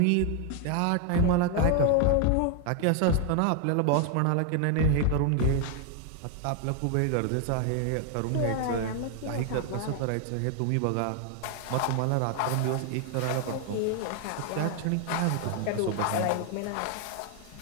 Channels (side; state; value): both; different; correlation 0.00